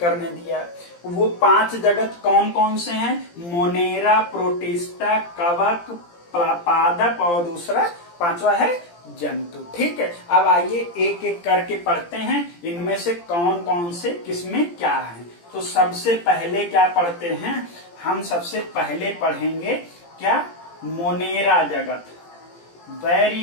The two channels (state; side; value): late; right; 17 ms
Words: ने दिया। वो 5 जगत कौन कौन से हैं? मोनेरा, प्रोटिस्टा, कवक, पादप और दूसरा 5वां है जंतु, ठीक है। अब आइए एक एक करके पढ़ते हैं, इनमें से कौन कौन से किसमें क्या है। तो सबसे पहले क्या पढ़ते हैं हम? सबसे पहले पढ़ेंगे क्या? मोनेरा जगत, वेरी